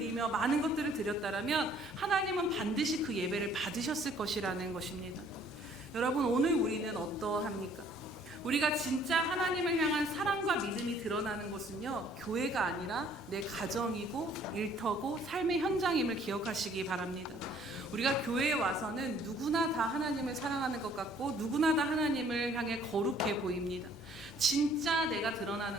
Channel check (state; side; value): normal; both; correlation 0.59